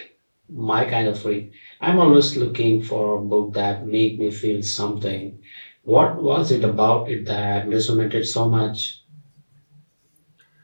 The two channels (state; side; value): inverted; both; correlation -1.00